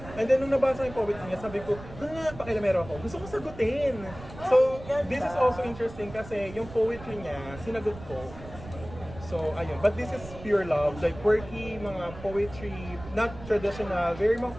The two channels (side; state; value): right; noise; rumble, 15 dB below the sound